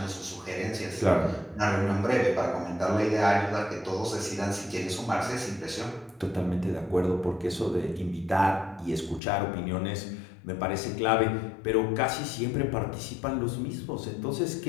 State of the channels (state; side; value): drops out; right; at 9.2 s